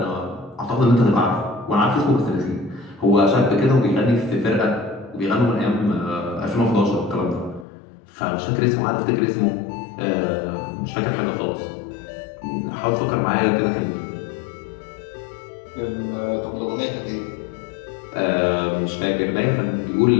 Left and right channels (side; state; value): right; drops out; at 7.7 s